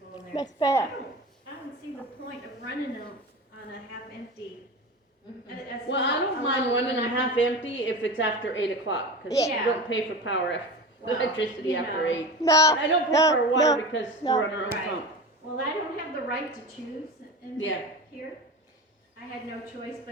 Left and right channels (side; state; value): both; normal; correlation 0.29